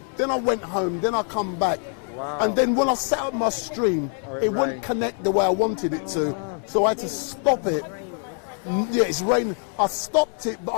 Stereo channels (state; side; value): quieter; right; 39.5 dB